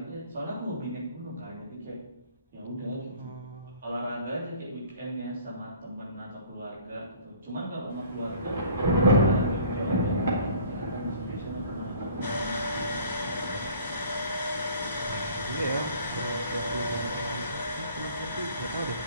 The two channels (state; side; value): inverted; both; correlation -0.50